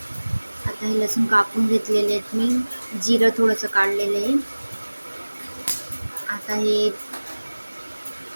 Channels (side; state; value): both; inverted; correlation -1.00